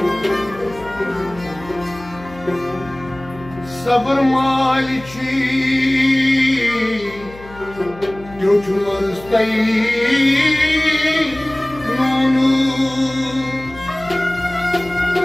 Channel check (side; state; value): left; noise; hum, 19 dB below the sound